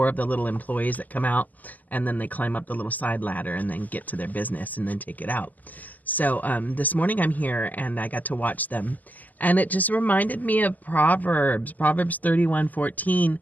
of the little employees that come out, and then they climb up the little side ladder and then get to their business and then take it out. So this morning I'm here and I got to watch them. And it just reminded me of Proverbs 31:14,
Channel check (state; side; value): late; right; 0.081 ms